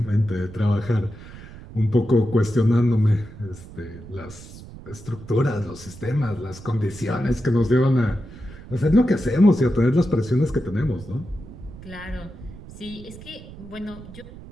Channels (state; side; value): noise; right; rumble, 16 dB below the sound